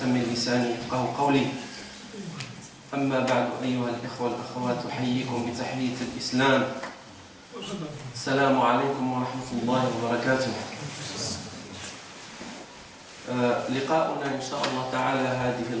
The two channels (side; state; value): both; identical; correlation 1.00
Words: من لساني يفقهوا قولي. أما بعد أيها الإخوة والأخوات أحييكم بتحية الإسلام. السلام عليكم ورحمة الله وبركاته. لقاؤنا إن شاء الله تعالى هذه